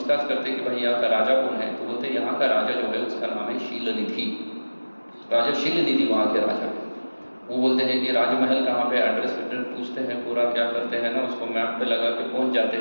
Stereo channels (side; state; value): both; inverted; correlation -1.00